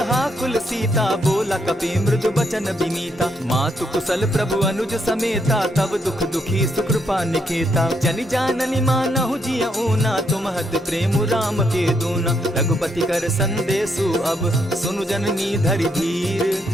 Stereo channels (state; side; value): normal; both; correlation 0.76